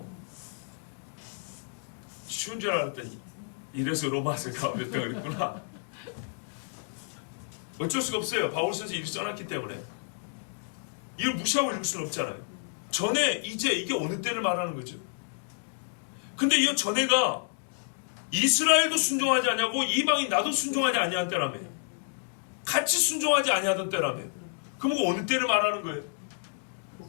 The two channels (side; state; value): right; silent; digital silence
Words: 쉬운 줄 알았더니 이래서 로마서 가볍다 그랬구나. 어쩔 수가 없어요. 바울 선생이 이렇게 써놨기 때문에. 이걸 무시하고 읽을 수는 없잖아요. 전에, 이제, 이게 어느 때를 말하는 거죠. 근데 이 전에가 이스라엘도 순종하지 아니하고 이방인 나도 순종하지 아니한 때라며. 같이 순종하지 아니하던 때라며. 그럼 어느 때를 말하는 거예요?